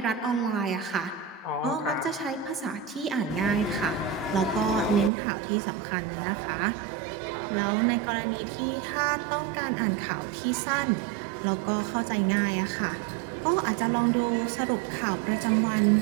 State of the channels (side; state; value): left; drops out; at 5.1 s